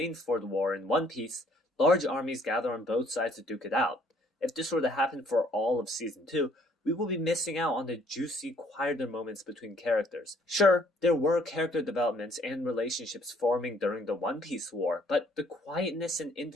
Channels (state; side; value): normal; both; correlation 0.62